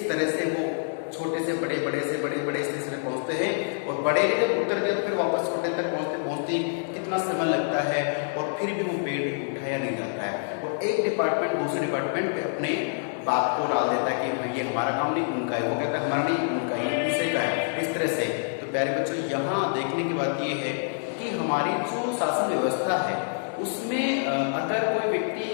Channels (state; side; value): silent; right; digital silence